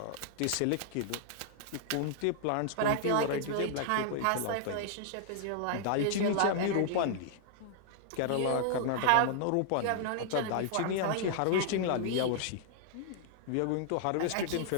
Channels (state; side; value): different; both; correlation -0.01